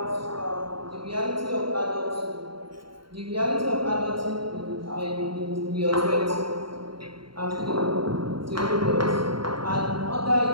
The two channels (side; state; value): left; late; 0.73 ms